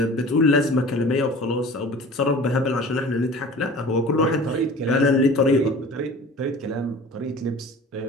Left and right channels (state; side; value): normal; both; correlation 0.42